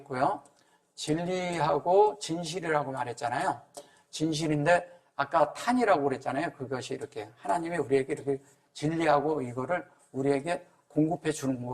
진리하고 진실이라고 말했잖아요. 진실인데 아까 탄이라고 그랬잖아요. 그것이 이렇게 하나님이 우리에게 이렇게 진리하고 이거를 우리에게 공급해 주는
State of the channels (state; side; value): identical; both; correlation 1.00